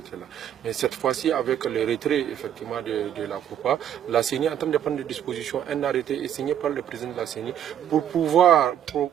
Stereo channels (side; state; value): left; quieter; 10.1 dB